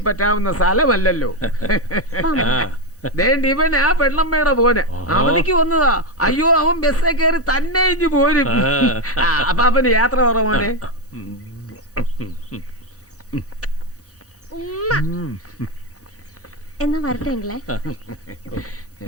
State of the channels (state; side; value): late; left; 3.4 ms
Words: പറ്റാവുന്ന സ്ഥലമല്ലല്ലോ. ഇവൻ ആ പെണ്ണമ്മയുടെ പോനെ അവധിക്ക് വന്നതാ. അയ്യോ, അവൻ ബസ്സേ കയറി തന്നെ ഇഞ്ഞു പോരും. അപ്പൊ അവന് യാത്ര കുറവാണ്. എന്നാ വരട്ടെ അങ്കിളെ.